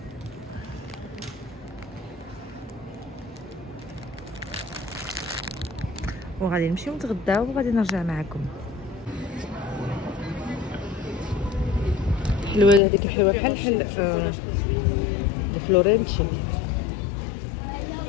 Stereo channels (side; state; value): right; drops out; at 12.8 s